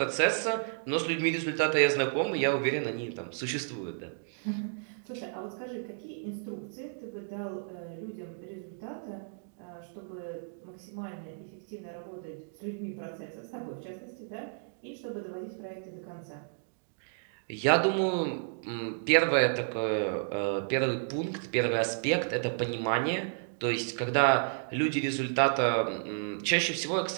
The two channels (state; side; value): silent; left; digital silence